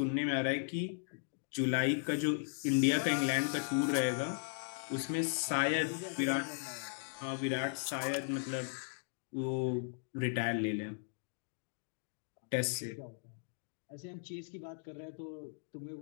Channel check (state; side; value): silent; right; digital silence